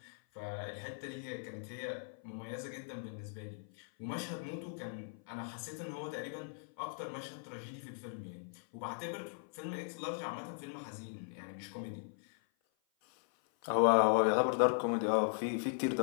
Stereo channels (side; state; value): right; silent; 52 dB below the other